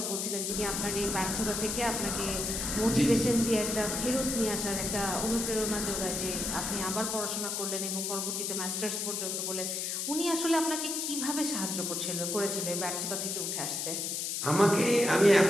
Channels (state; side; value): noise; left; hiss, 2 dB below the sound